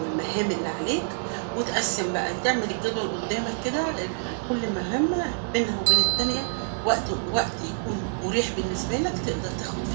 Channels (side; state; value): left; silent; digital silence